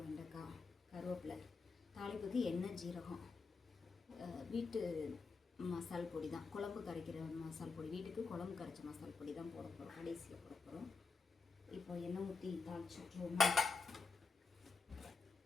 வெண்டைக்காய், கருவேப்பிலை, தாளிப்புக்கு எண்ணெய், ஜீரகம், வீட்டு மசால் பொடி தான், குழம்பு கரைக்கிற மசால் பொடி, வீட்டுக்கு குழம்பு கரைச்ச மசால் பொடி தான் போட போகிறோம், கடைசியில் போட போகிறோம். இப்போ எண்ணெய் ஊற்றி தாளிச்சு விட்ருவோமா.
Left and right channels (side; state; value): right; quieter; 4.6 dB